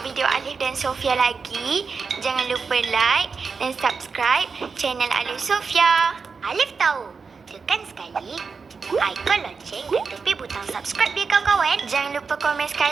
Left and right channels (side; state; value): left; quieter; 5.1 dB